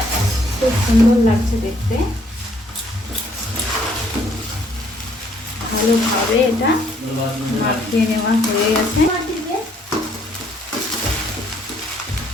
খুব সুন্দর লাগছে দেখতে। ভালোভাবে এটা মাখিয়ে নেওয়া হয়ে গেছে।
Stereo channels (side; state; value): both; normal; correlation 0.66